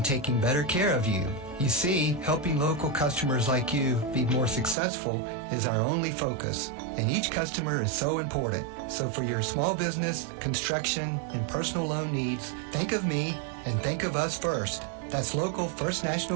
taking better care of you? You see, helping local customers like you be more successful is our only focus, and each customer is so important. So for your small business, construction, and personal loan needs, think of me and think of us first. That's local First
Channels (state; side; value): drops out; left; at 4.8 s